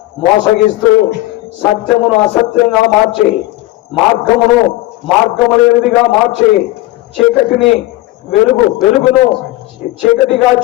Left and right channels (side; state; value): right; quieter; 18.1 dB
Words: మోసగిస్తూ సత్యమును అసత్యంగా మార్చి, మార్గము లేనిదిగా మార్చి, చీకటిని వెలుగును చీకటిగా